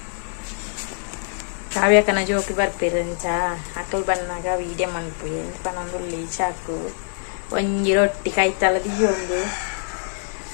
ಕಾವ್ಯಕನ ಜೋಕಿ ಬರ್ಪಿರಂಚ ಅಕ್ಕಲ್ ಬನ್ನಾಗ ವೀಡಿಯೋ ಮನ್ಪು ಎಂತ ಪನೊಂದುಳ್ಳಿ ಚಾಕು ಒಂಜಿ ರೊಟ್ಟಿ ಕೈತಲ ದಿಯೊಂದು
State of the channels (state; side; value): silent; right; digital silence